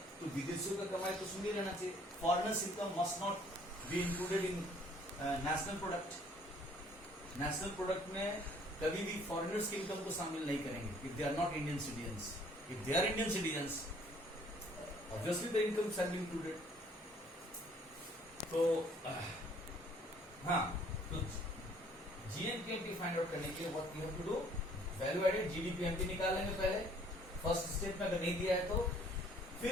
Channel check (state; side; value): normal; both; correlation 0.59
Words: तो विदेशियों का कमाई तो सुन ही रहना चाहिए, foreigners income must not be included in national product. National product में कभी भी फॉरेनर्स की इनकम को शामिल नहीं करेंगे if they are not Indian citizens. If they are Indian citizens, obviously the income shall be included. तो हाँ, तो जीएनपीएमपी फाइंड आउट करने के लिए what you have to do, value added GDPMP निकालेंगे पहले, फर्स्ट स्टेप में अगर नहीं दिया है तो